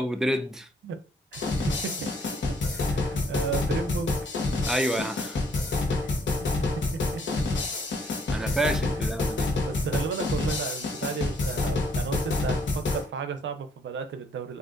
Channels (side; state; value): both; normal; correlation 0.66